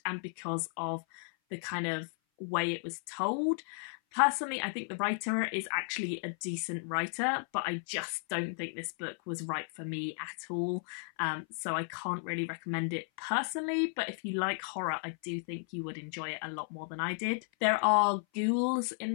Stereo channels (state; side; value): silent; right; 55 dB below the other